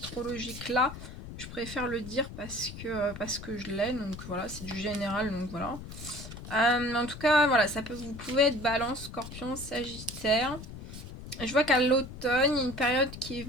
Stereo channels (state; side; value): noise; left; rumble, 12 dB below the sound